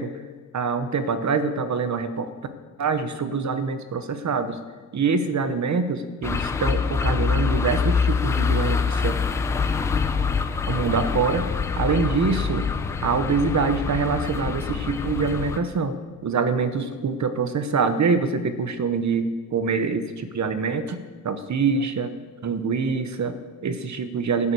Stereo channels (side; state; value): both; normal; correlation 0.30